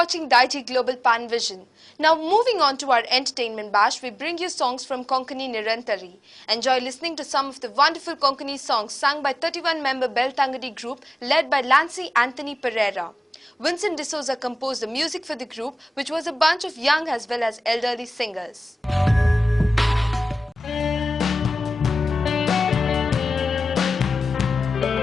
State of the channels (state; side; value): normal; both; correlation 0.96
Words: Digi Global Pan Vision. Now moving on to our entertainment bash, we bring you songs from Konkani Nirantari. Enjoy listening to some of the wonderful Konkani songs sung by 31-member Beltangadi group led by Lancy Anthony Pereira. Vincent D'Souza composed the music for the group, which was a bunch of young as well as elderly singers.